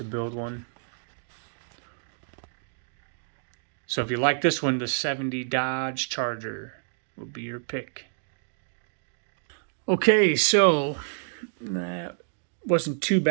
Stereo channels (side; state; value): left; silent; digital silence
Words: build one. So if you like this one, the 70 Dodge Charger will be your pick. Okay, so that wasn't too